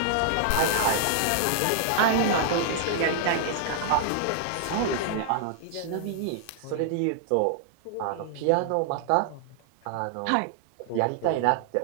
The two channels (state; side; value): different; both; correlation 0.00